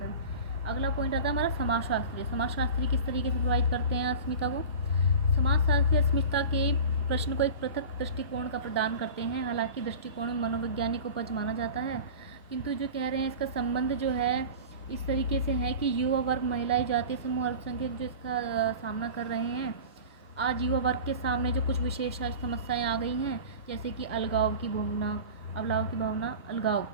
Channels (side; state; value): both; inverted; correlation -0.35